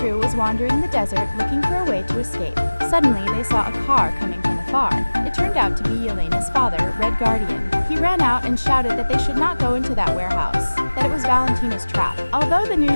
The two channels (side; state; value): both; inverted; correlation -1.00